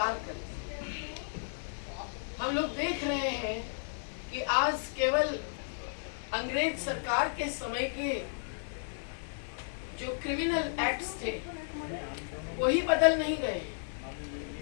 करते हैं। हम लोग देख रहे हैं कि आज केवल अंग्रेज सरकार के समय के जो क्रिमिनल एक्ट्स थे वही बदल नहीं गए।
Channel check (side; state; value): right; silent; digital silence